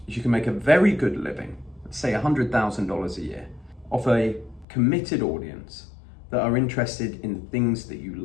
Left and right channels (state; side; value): drops out; right; at 4.7 s